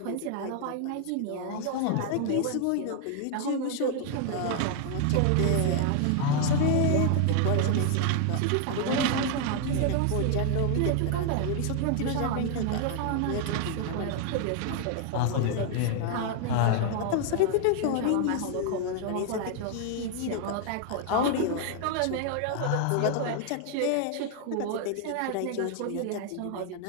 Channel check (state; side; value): different; both; correlation 0.00